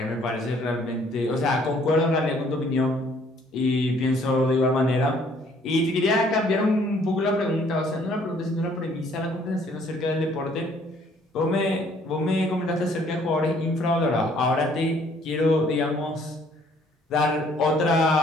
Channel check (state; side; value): normal; both; correlation 0.61